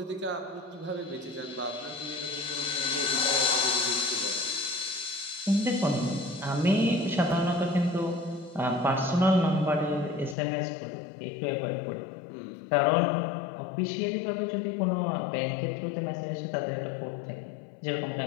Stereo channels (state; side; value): drops out; right; at 10.4 s